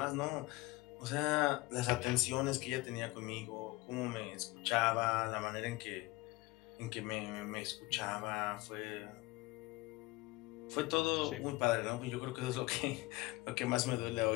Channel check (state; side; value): quieter; right; 21.5 dB